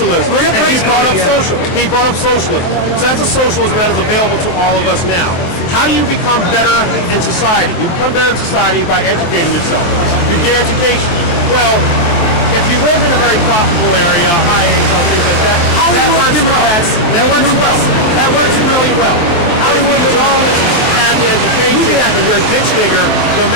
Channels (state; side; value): late; right; 23 ms